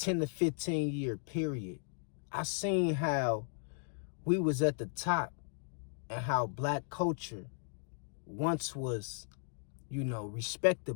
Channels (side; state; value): right; silent; digital silence